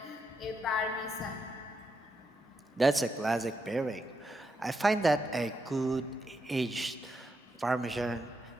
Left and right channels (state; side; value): normal; both; correlation 0.82